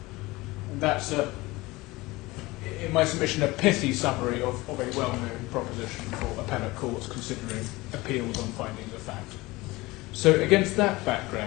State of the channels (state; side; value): quieter; right; 21.1 dB